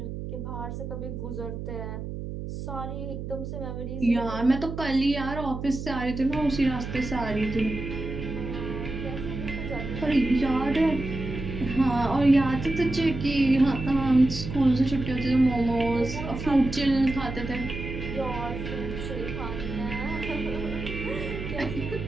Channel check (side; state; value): right; noise; hum, 7 dB below the sound